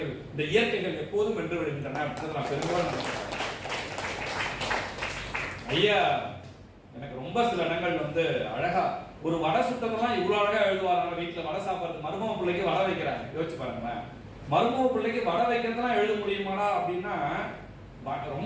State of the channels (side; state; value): both; identical; correlation 1.00